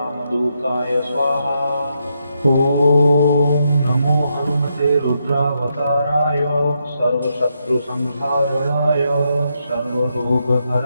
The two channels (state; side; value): inverted; both; correlation -0.81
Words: स्वाहा। ॐ नमो हनुमते रुद्रावताराय सर्वशत्रुसंहारणाय